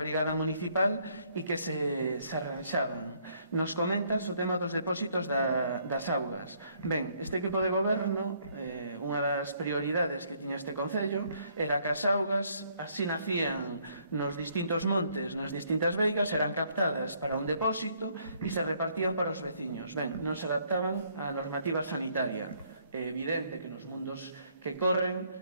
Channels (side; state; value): both; inverted; correlation -0.67